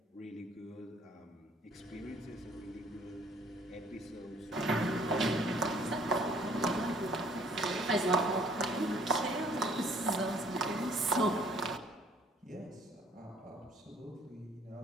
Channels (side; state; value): both; normal; correlation 0.58